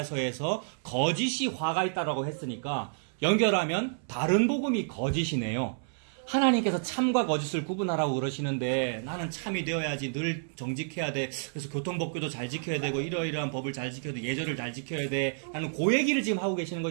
거짓이 화가 있다라고 했으니까 연결하면 다른 복음이 거짓이네요. 하나님께서 참과 거짓을 구분하라고 그러시는데, 나는 참이 되어야지, 늘 정직해야 돼, 그래서 교통법규도 잘 지켜야 되고 이러이러한 법을 잘 지켜야 돼, 예절을 잘 지켜야 돼 라는 그 얘기를 지금 하고 계시는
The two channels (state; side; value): silent; left; 58 dB below the other